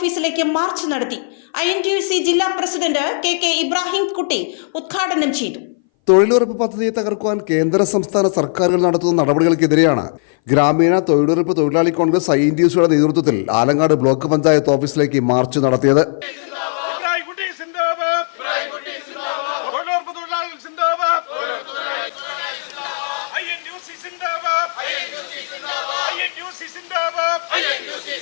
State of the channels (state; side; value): silent; right; 60 dB below the other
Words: മാർച്ച് നടത്തി. INTUC ജില്ലാ പ്രസിഡന്റ് KK ഇബ്രാഹിം കുട്ടി ഉദ്ഘാടനം ചെയ്തു. തൊഴിലുറപ്പ് പദ്ധതിയെ തകർക്കുവാൻ കേന്ദ്ര സംസ്ഥാന സർക്കാരുകൾ നടത്തുന്ന നടപടികൾക്കെതിരെയാണ് ഗ്രാമീണ തൊഴിലുറപ്പ് തൊഴിലാളി കോൺഗ്രസ് INTUCയുടെ നേതൃത്വത്തിൽ ആലങ്ങാട് ബ്ലോക്ക് പഞ്ചായത്ത് ഓഫീസിലേക്ക് മാർച്ച് നടത്തിയത്.